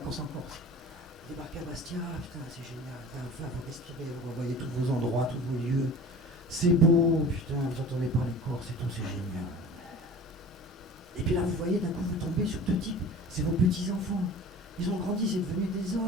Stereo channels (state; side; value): normal; both; correlation 0.40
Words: en Corse. Débarquer à Bastia, putain, c'est génial. Enfin, vous respirez, vous voyez tous vos endroits, tous vos lieux. C'est beau, putain, vous entendez parler Corse et tout, c'est génial. Et puis là, vous voyez, d'un coup, vous tombez sur deux types. C'est vos petits-enfants. Ils ont grandi, c'est devenu des